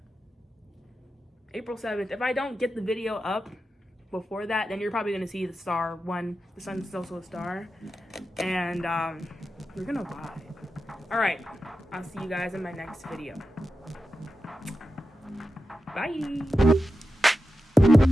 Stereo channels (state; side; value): normal; both; correlation 0.91